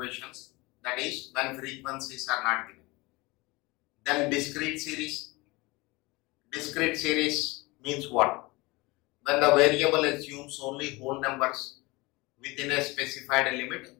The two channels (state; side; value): quieter; right; 23.5 dB